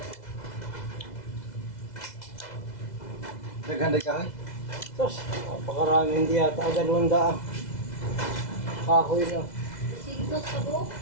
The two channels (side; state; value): right; late; 2.0 ms